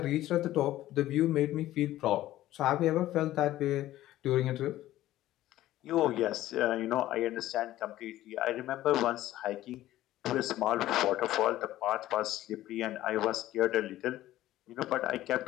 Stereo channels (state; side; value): quieter; right; 14.6 dB